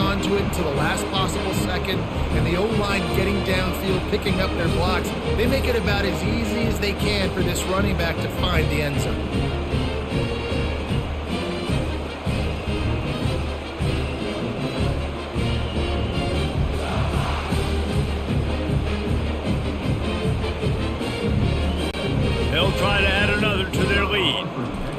to it until the last possible second, and the O-line getting downfield, picking up their blocks. They make it about as easy as they can for this running back to find the end zone. They'll try to add another to their lead.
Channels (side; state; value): both; identical; correlation 1.00